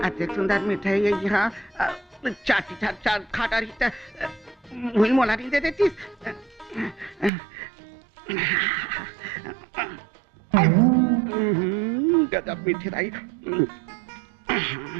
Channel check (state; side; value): drops out; left; at 7.3 s